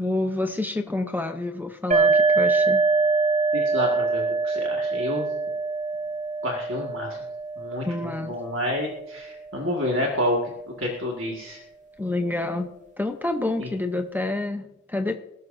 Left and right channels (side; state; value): both; normal; correlation 0.46